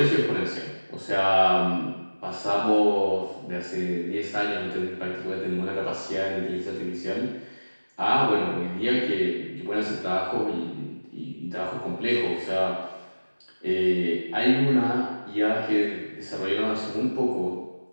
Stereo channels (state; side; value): inverted; both; correlation -1.00